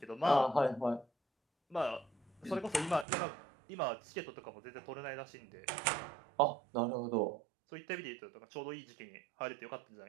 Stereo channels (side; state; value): left; drops out; at 3.1 s